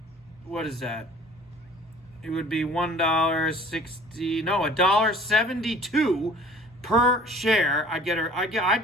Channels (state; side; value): normal; both; correlation 0.49